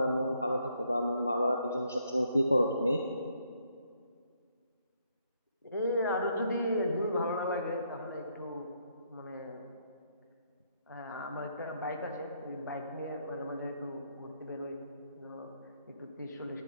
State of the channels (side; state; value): both; inverted; correlation -0.73